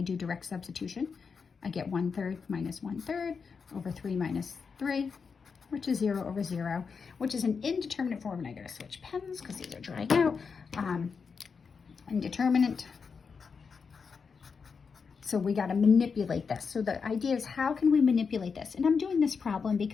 do direct substitution, I get 1/3 minus 1/3 over 3 minus 3, which is 0 over 0, which is an indeterminate form. And I gotta switch pens because these are drying out. Indeterminate. So we got to manipulate this. So the idea is, how can we manipulate this? And I'm doing this problem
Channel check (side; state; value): right; quieter; 5.6 dB